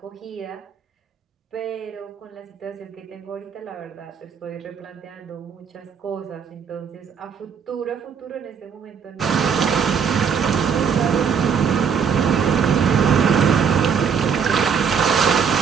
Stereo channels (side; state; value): left; quieter; 6.8 dB